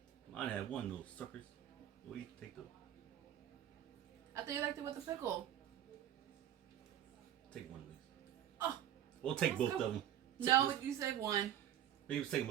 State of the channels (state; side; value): quieter; left; 11.1 dB